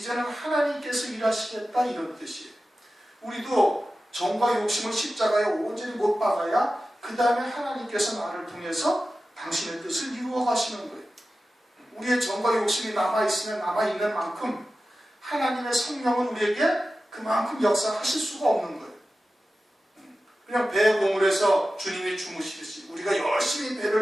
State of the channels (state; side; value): normal; both; correlation 0.94